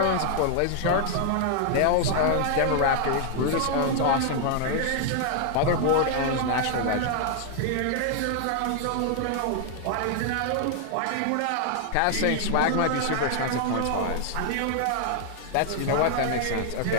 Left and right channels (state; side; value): different; both; correlation 0.00